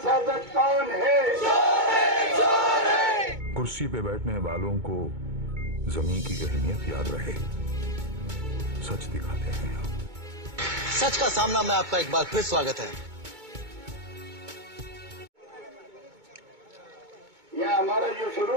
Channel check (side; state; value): left; late; 2.2 ms